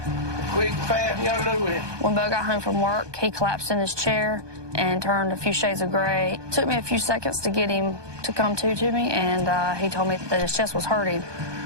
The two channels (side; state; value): left; late; 1.2 ms